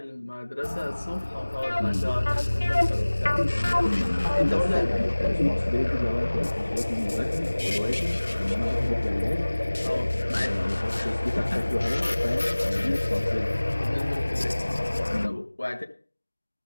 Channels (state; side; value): inverted; both; correlation -1.00